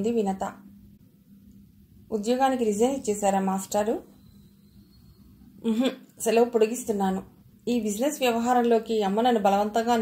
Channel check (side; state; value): both; identical; correlation 1.00